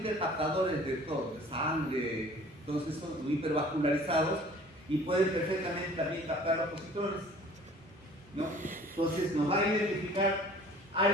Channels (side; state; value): both; normal; correlation 0.49